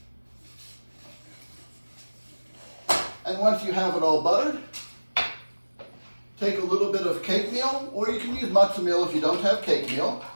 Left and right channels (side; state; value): both; inverted; correlation -1.00